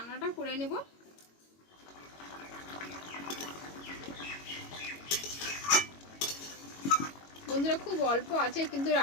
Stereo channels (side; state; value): right; late; 22 ms